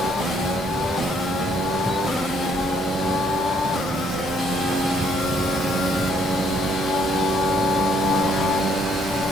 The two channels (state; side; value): normal; both; correlation 0.68